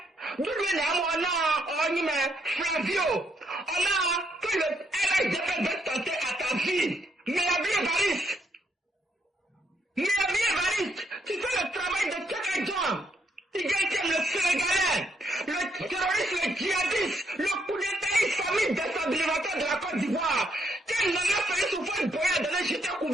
on a Flavio, on a que le RHDP va tenter à ta vie. Meabri Évariste. Meabri Évariste, tu fais le travail de Tchèque John. Tu gagnes le Sénégalais, le terroriste, le djihadiste, le coup d'état islamique déstabilisateur de la Côte d'Ivoire. Quel n'en a fait souffrir de boyer de l'échec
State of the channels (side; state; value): both; normal; correlation 0.74